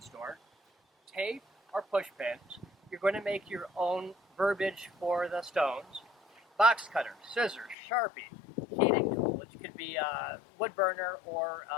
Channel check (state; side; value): drops out; right; at 7.8 s